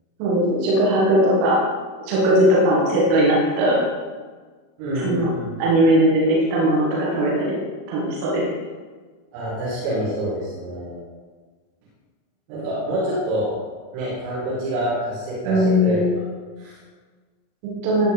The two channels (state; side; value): late; left; 37 ms